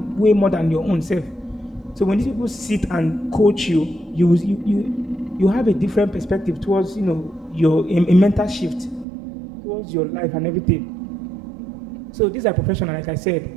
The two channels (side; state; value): left; drops out; at 9.1 s